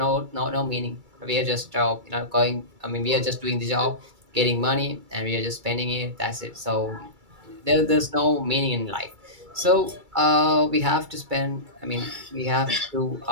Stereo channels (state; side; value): late; left; 2.3 ms